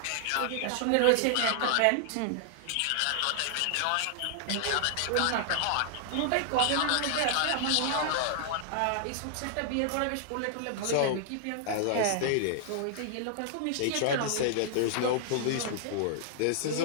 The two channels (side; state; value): both; different; correlation -0.01